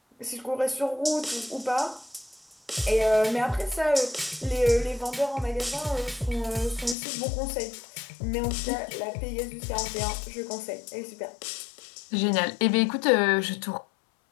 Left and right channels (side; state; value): right; drops out; at 7.0 s